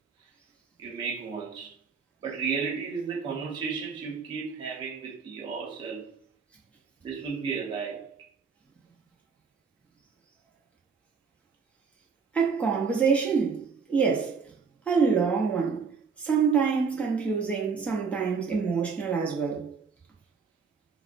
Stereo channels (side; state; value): left; quieter; 5.5 dB